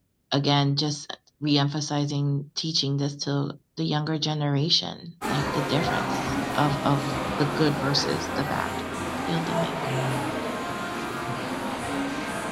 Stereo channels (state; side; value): identical; both; correlation 1.00